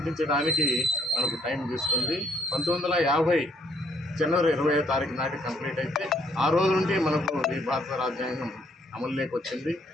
మనకు టైం తీసుకుంది. 1950 జనవరి 20వ తారీఖు నాటి కంప్లీట్ అయితే ఆ రోజు నుండి మనకు ఈ భారత రాజ్యాంగం అమలులోకి వచ్చింది.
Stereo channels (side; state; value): both; normal; correlation 0.67